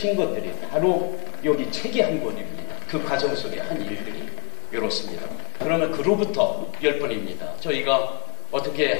것들이 바로 여기 책이 한 권입니다. 그 과정 속에 한 일들이 이렇습니다. 그러면 그로부터 10번입니다. 저희가 어떻게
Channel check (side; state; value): right; quieter; 35.3 dB